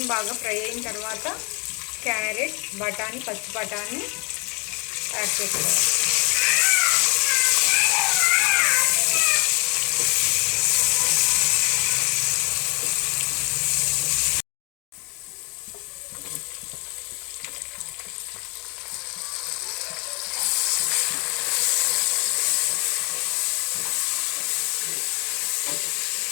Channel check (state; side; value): quieter; right; 30.7 dB